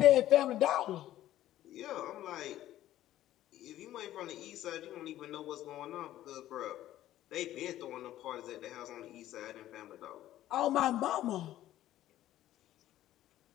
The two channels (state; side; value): quieter; right; 13.6 dB